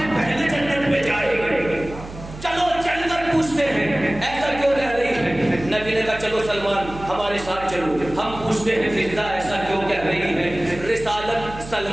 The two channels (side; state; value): right; noise; hum, 14 dB below the sound